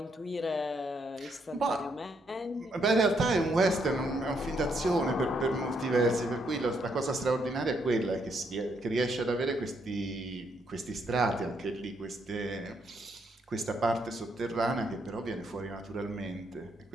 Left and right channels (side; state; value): both; normal; correlation 0.75